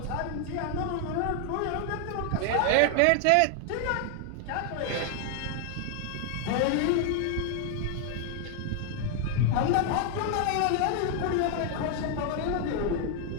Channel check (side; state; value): both; different; correlation 0.00